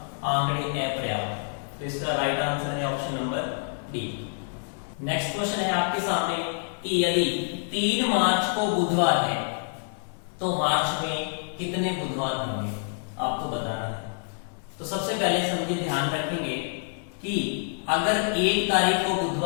आंकड़े अपर्याप्त। तो इसका राइट आंसर है option number D. Next question है आपके सामने कि यदि 3 मार्च को बुधवार है तो मार्च में कितने बुधवार होंगे, आपको बताना है। तो सबसे पहले समझिए, ध्यान रखेंगे कि अगर 1 तारीख को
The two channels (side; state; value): right; silent; 60 dB below the other